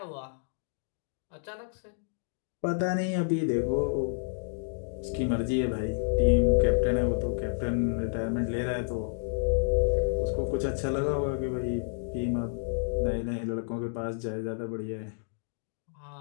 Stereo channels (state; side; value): silent; right; digital silence